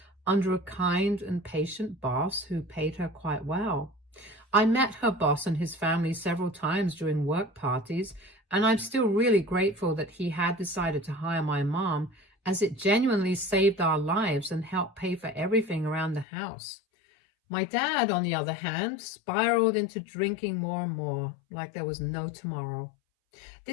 under a kind and patient boss who paid her quite well. I met her boss and his family several times during work parties, and I'm still really grateful that he had decided to hire my mom, as it genuinely saved our lives and helped pay for everything around the house. My dad, on the other hand, spiraled into drinking more and more, like there was no tomorrow.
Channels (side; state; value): right; drops out; at 16.2 s